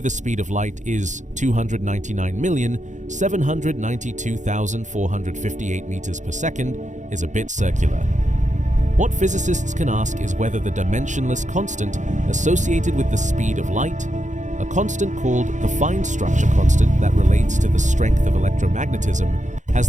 speed of light is 299,792,458 meters per second is a bit circular. What physicists can ask is whether the dimensionless constant associated with the speed of light, a constant called the fine structure constant that relates to the strength of electromagnetism, has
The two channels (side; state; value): left; late; 0.35 ms